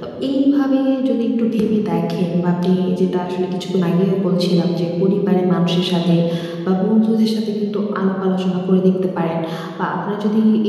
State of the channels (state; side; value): identical; both; correlation 1.00